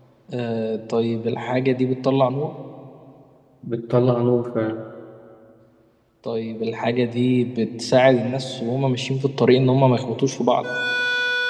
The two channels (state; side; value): identical; both; correlation 1.00